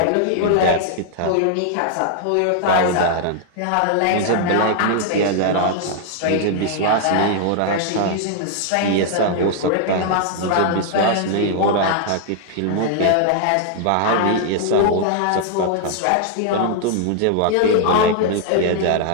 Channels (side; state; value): both; different; correlation 0.00